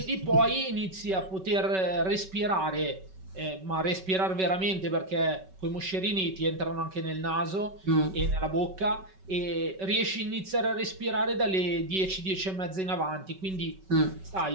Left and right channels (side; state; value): left; late; 5.3 ms